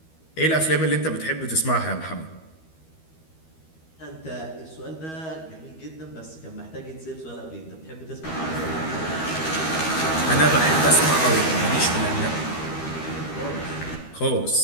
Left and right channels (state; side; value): late; right; 13 ms